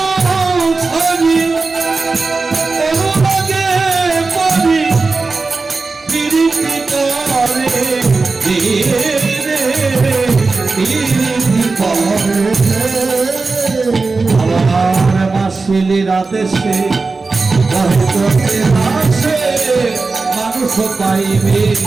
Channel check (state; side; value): quieter; left; 4.0 dB